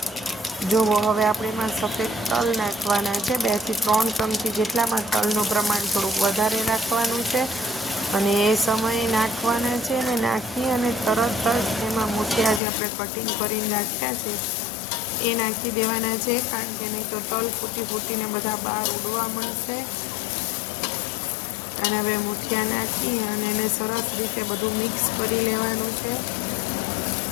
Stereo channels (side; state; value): right; drops out; at 12.6 s